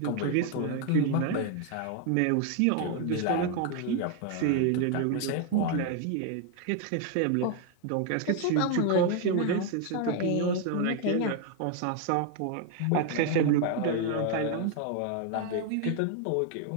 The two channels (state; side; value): different; both; correlation 0.01